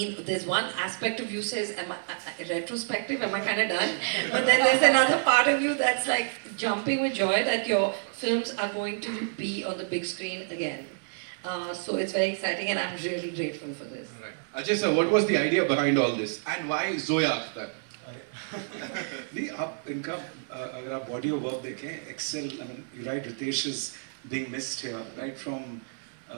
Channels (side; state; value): left; silent; digital silence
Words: there's one aspect of you says, retrospective, am I kind of done? But then there's another part of you that's like jumping with joy that your films are going to be on the big screen again. So it's very exciting, and I'm really grateful for this. Right. Ajay sir, what was the idea behind all this, and why Zoya Akhtar? नहीं आप इनका अगर आप body of work देखें excel I mean you right Ritesh is being missed here right from